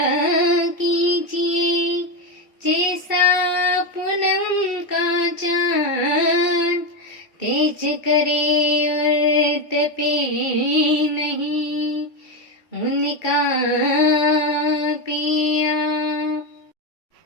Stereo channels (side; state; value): right; late; 2.7 ms